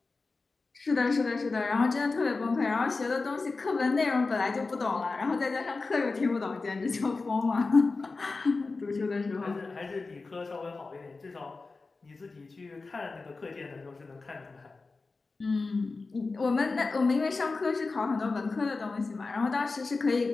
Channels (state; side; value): quieter; right; 3.9 dB